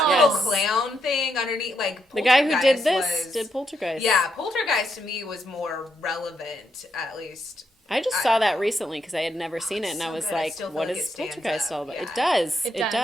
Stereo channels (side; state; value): both; normal; correlation 0.80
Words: little clown thing underneath, like the guy who did this did Poltergeist. Yeah, Poltergeist to me was more relevant, at least. I just saw that recently because I had never seen it, and I was like, "What is Poltergeist all about?" It does. It